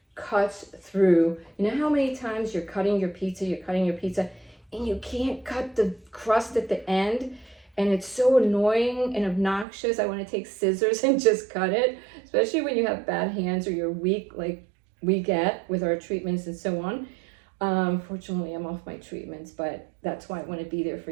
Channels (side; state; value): left; drops out; at 9.7 s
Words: cuts through. You know how many times you're cutting your pizza, and you can't cut the crust at the end? And it's so annoying and obnoxious. I want to take scissors and just cut it, especially when you have bad hands or you're weak, like we get with our treatments and so on. Fortunately, I'm off my treatments, but that's why I want to be there